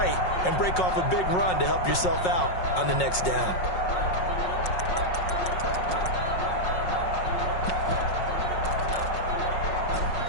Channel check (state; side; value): late; right; 5.5 ms